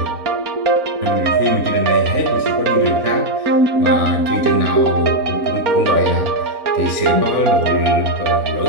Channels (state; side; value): late; left; 4.0 ms